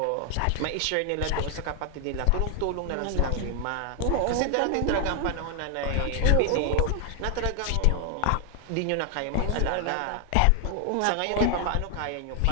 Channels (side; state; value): both; different; correlation 0.00